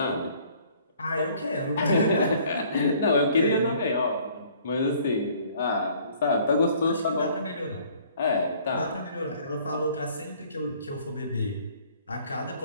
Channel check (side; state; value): both; inverted; correlation -0.57